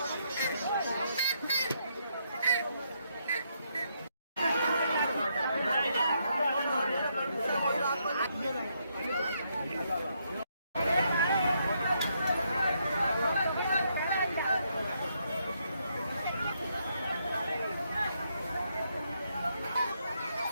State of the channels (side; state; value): both; inverted; correlation -0.77